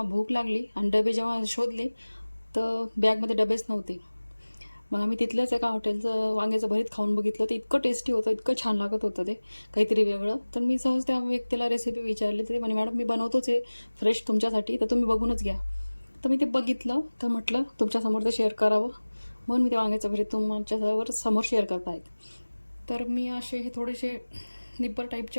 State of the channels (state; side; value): inverted; both; correlation -1.00